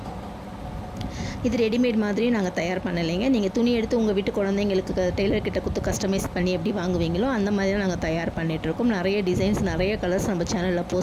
இது ரெடிமேட் மாதிரி நாங்கள் தயார் பண்ணலைங்க. நீங்கள் துணி எடுத்து உங்கள் வீட்டு குழந்தைங்களுக்கு டெய்லர்கிட்ட கொடுத்து கஸ்டமைஸ் பண்ணி எப்படி வாங்குவீங்களோ அந்த மாதிரி நாங்கள் தயார் பண்ணிகிட்ருக்கோம். நிறைய டிசைன்ஸ், நிறைய கலர்ஸ் நம்ம சேனலில்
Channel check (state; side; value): identical; both; correlation 1.00